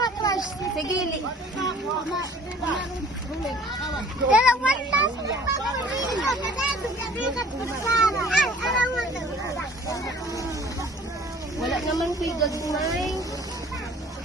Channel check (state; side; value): normal; both; correlation 0.51